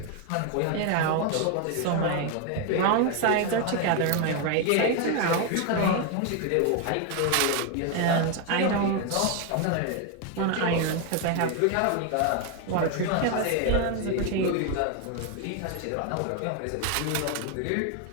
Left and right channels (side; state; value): both; different; correlation 0.01